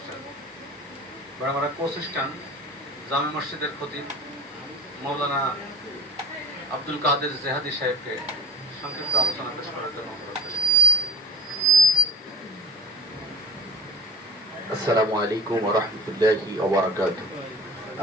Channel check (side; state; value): both; normal; correlation 0.40